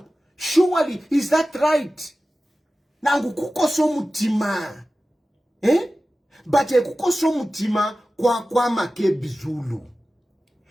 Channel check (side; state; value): both; normal; correlation 0.95